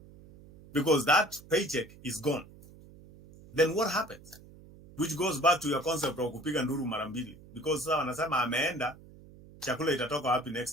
Because that paycheck is gone. Then what happens? Which goes back to your concept of kupiga nduru mara mbili. Because sasa wanasema ameenda, chakula itatoka wapi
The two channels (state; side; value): noise; right; hum, 21 dB below the sound